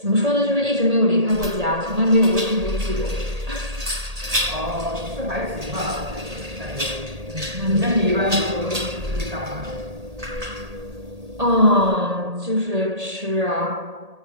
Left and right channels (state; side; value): late; left; 1.8 ms